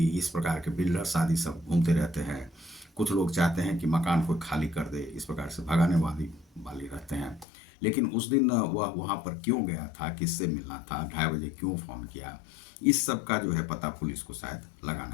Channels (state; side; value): drops out; right; at 7.5 s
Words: इस प्रकार के बिल्डर्स आदि सब घूमते रहते हैं। कुछ लोग चाहते हैं कि मकान को खाली कर दे, इस प्रकार से भगाने वाली रहते हैं। लेकिन उस दिन वह वहाँ पर क्यों गया था, किससे मिलना था, 2:30 बजे क्यों फ़ोन किया, इस सब का जो है पता पुलिस को शायद